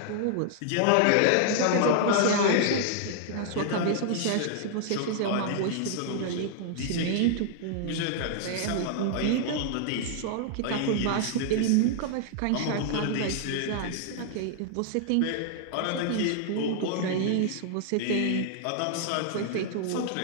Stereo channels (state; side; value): different; both; correlation -0.01